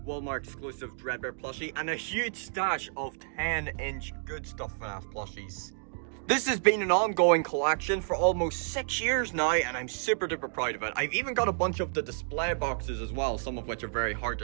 Walmart exclusive Dreadbear plushie and a huge stash of 10-inch Good Stuff FNAF plushies. This has been an ongoing collection for almost 6 years now, and I'm super duper proud of it. I've even got a bunch of the display boxes as well, some of which are very hard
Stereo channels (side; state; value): left; silent; digital silence